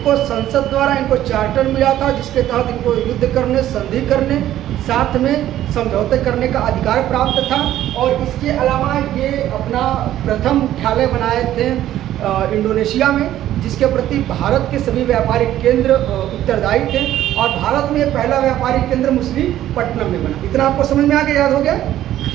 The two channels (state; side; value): quieter; left; 12.8 dB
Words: संसद द्वारा इनको चार्टर मिला था, जिसके तहत इनको युद्ध करने, संधि करने, साथ में समझौते करने का अधिकार प्राप्त था। और इसके अलावा ये अपना प्रथम मुख्यालय बनाए थे इंडोनेशिया में, जिसके प्रति भारत के सभी व्यापारिक केंद्र उत्तरदायी थे। और भारत में पहला व्यापारिक केंद्र मछलीपट्टनम में बना। इतना आपको समझ में आ गया, याद हो गया?